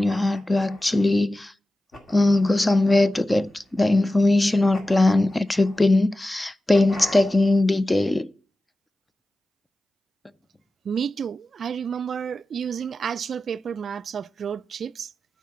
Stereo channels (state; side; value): normal; both; correlation 0.94